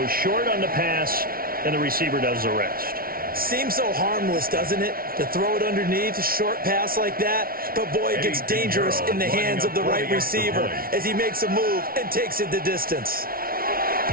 short on the pass, and the receiver does the rest. Seems so harmless, doesn't it, to throw it underneath, a short pass like that? But, boy, it gets dangerous in the hands of the right receiver as he makes a move and takes it the distance.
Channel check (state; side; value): late; left; 0.43 ms